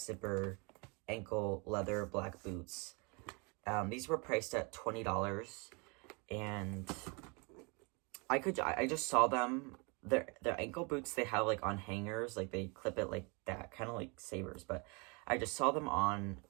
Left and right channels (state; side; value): quieter; left; 31.0 dB